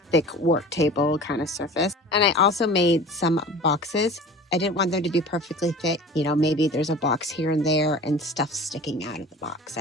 thick work table kind of surface. And I also made some boxes. I didn't want them to be perfectly fit. You know, maybe there's a box here and there and stuff sticking out of the box.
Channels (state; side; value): normal; both; correlation 0.39